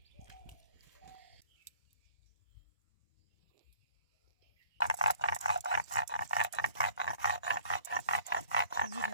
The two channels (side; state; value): both; inverted; correlation -0.54